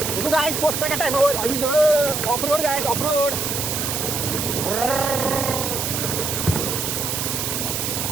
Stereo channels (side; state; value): right; noise; hiss, 2 dB below the sound